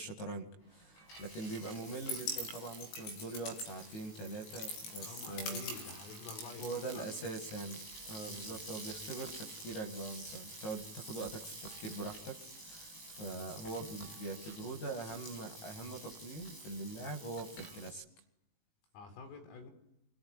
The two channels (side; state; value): right; late; 19 ms